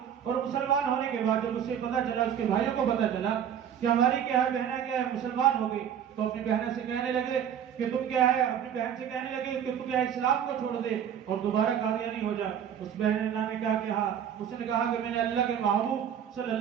اور مسلمان ہونے کے بعد جب اسے پتا چلا، اس کے بھائیوں کو پتا چلا کہ ہماری کیا ہے بہنیں کیا ہے مسلمان ہو گئی، تو اپنی بہنیں سے کہنے لگے کہ تم کیا ہے اپنی بہن سے کہنے لگے کہ تم کیا ہے اسلام کو چھوڑ دے اور دوبارہ قادیانی ہو جا۔ اس بہن نے کیا کہا، اس نے کہا کہ میں نے اللہ کے محبوب صلی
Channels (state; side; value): quieter; left; 9.0 dB